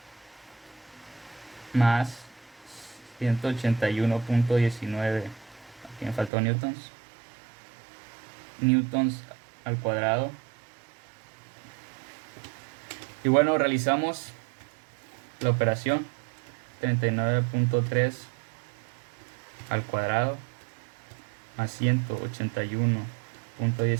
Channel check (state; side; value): drops out; left; at 6.3 s